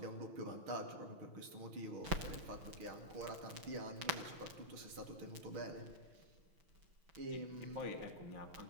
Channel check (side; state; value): left; late; 6.1 ms